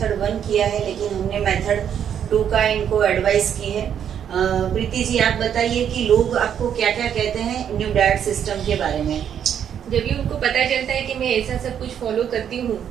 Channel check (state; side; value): quieter; left; 8.9 dB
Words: 1 किया है, लेकिन हमने मेथड 2 का इनको एडवाइस की है। प्रीति जी, आप बताइए कि लोग आपको क्या क्या कहते हैं न्यू डाइट सिस्टम के बारे में? जब भी उनको पता चलता है कि मैं ऐसा सब कुछ फॉलो करती हूँ